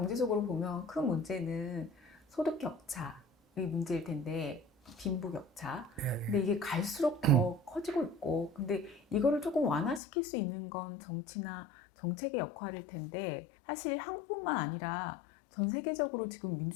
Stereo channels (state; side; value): drops out; right; at 10.0 s